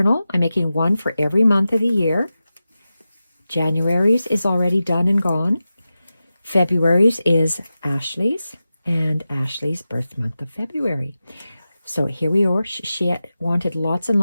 I'm making one for every month of the year. January's is already done and gone. February's is Ashley's, and Ashley's birth month of February. So here we are. She wanted lots and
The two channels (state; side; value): inverted; both; correlation -0.93